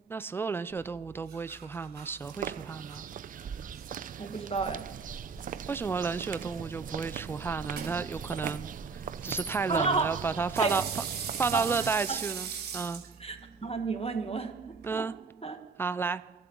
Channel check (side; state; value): left; quieter; 4.7 dB